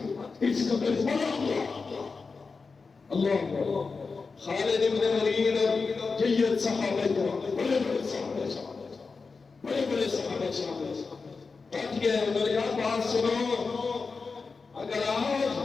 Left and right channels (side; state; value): right; quieter; 4.5 dB